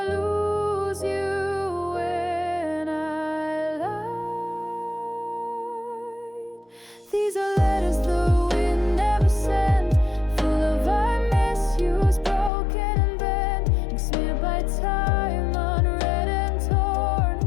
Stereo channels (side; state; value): right; drops out; at 12.5 s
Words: lose you when I lied? These are letters the wind never sent, full of I miss yous, broken and bent, ink smeared by time, unread and torn,